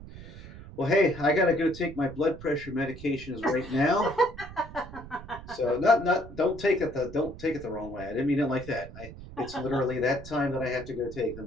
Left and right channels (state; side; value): noise; right; rumble, 15 dB below the sound